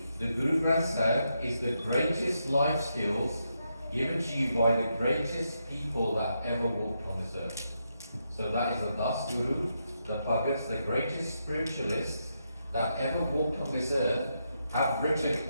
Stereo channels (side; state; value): both; inverted; correlation -0.82